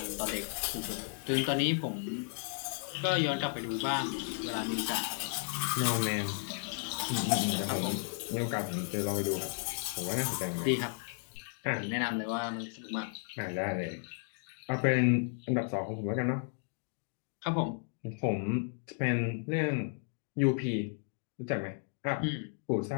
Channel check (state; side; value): silent; right; 55 dB below the other